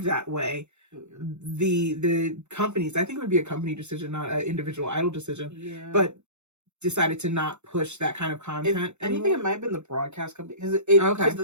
that way, the companies, I think it would be a company decision, not an individual idol decision, but decided to not push that kind of content. I think it might have been the broadcast company, because the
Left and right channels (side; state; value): left; late; 0.83 ms